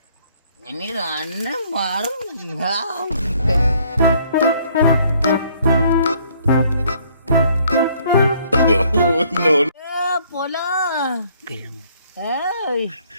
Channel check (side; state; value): both; inverted; correlation -0.63